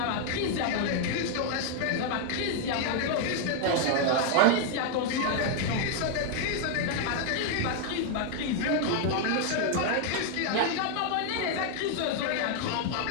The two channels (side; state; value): both; different; correlation 0.00